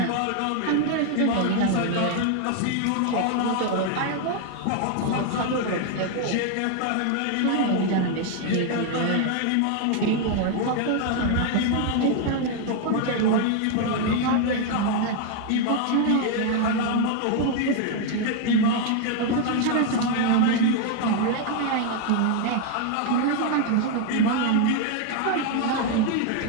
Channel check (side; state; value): both; different; correlation 0.00